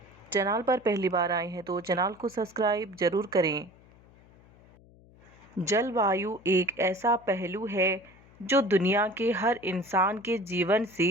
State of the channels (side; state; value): left; noise; hum, 26 dB below the sound